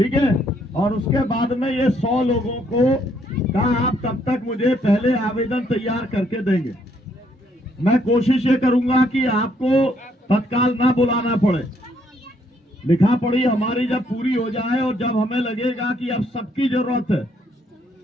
है। और उसके बाद में ये 100 लोगों को कहा आप कब तक मुझे पहले आवेदन तैयार करके देंगे। मैं कोशिश ये करूंगा कि आपको तत्काल ना बुलाना पड़े, लिखा पढ़ी हमारी जब पूरी हो जाए और जब हमें लगेगा कि अब सबकी जरूरत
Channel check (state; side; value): normal; both; correlation 0.70